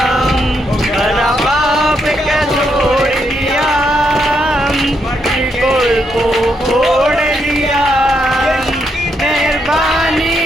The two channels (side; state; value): both; normal; correlation 0.78